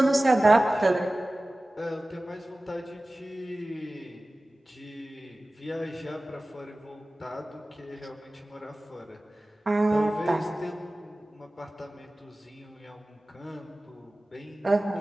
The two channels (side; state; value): both; normal; correlation 0.97